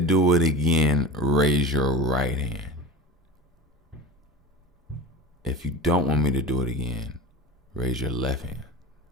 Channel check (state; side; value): normal; both; correlation 0.30